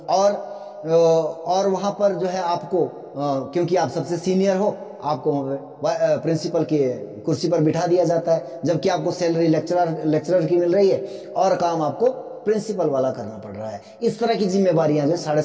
और वहां पर जो है आपको क्योंकि आप सबसे सीनियर हो, आपको प्रिंसिपल की कुर्सी पर बिठा दिया जाता है, जबकि आपको सैलरी लेक्चरर की मिल रही है और काम आपको प्रिंसिपल वाला करना पड़ रहा है। इस तरह की जिम्मेवारियां जो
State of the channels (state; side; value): identical; both; correlation 1.00